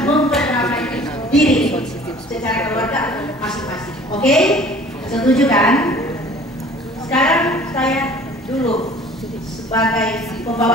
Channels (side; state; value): both; normal; correlation 0.49